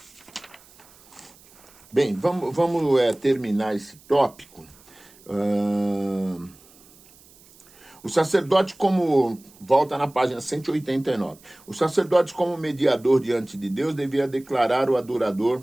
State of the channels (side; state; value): right; noise; hiss, 26 dB below the sound